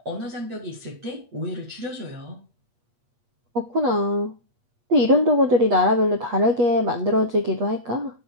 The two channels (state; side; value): late; left; 8.4 ms